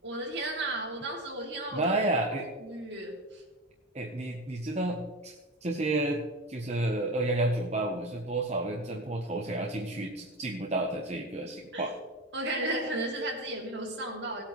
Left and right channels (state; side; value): normal; both; correlation 0.24